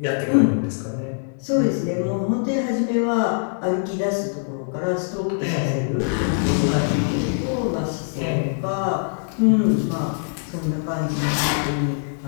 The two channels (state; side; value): silent; right; digital silence